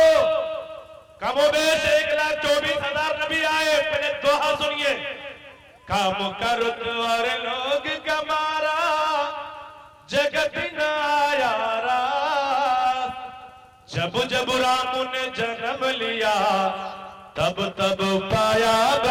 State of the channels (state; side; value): identical; both; correlation 1.00